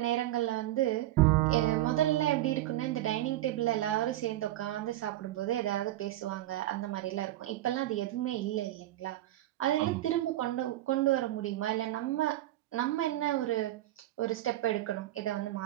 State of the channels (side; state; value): left; quieter; 14.9 dB